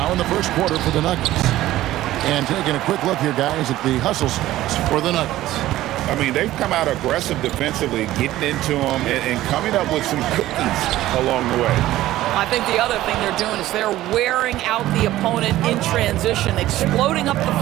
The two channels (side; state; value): left; quieter; 15.1 dB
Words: in the first quarter for the Nuggets. And taking a quick look here, guys, at the hustle stats for the Nuggets. I mean, they've come out aggressive defensively, getting into them and coming up with some cookies along the way. I think the other thing they're doing is they're wearing out the opponent in transition, exploding up the